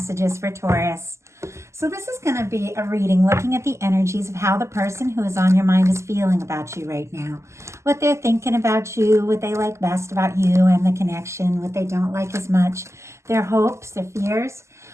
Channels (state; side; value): late; left; 0.13 ms